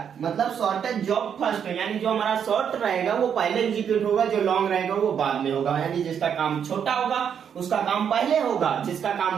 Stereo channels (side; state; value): left; quieter; 7.9 dB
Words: मतलब शॉर्टेज जॉब फर्स्ट है, यानी जो हमारा शॉर्ट रहेगा वो पहले एग्जीक्यूट होगा, जो लॉन्ग रहेगा वो बाद में होगा। यानी जिसका काम छोटा होगा उसका काम पहले होगा, जिसका